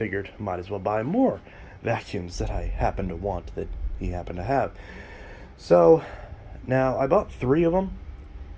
might as well buy more vacuums that I happen to want that he happened to have. So, now I bought 3 of them.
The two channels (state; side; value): identical; both; correlation 1.00